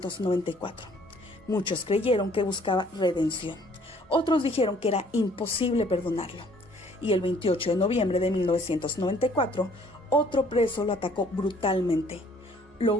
Muchos creyeron que buscaba redención. Otros dijeron que era imposible perdonarlo. Y el 28 de noviembre de 1994, otro preso lo atacó brutalmente. Lo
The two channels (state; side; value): normal; both; correlation 0.59